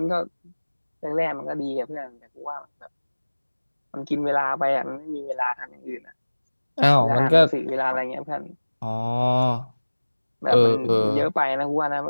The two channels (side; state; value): both; inverted; correlation -1.00